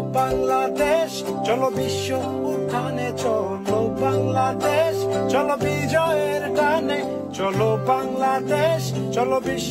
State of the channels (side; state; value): both; identical; correlation 1.00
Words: বাংলাদেশ, চলো বিশ্ব উঠানে, চলো বাংলাদেশ, চলো বিজয়ের টানে। চলো বাংলাদেশ, চলো